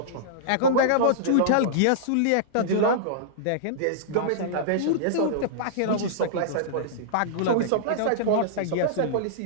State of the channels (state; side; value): different; both; correlation -0.02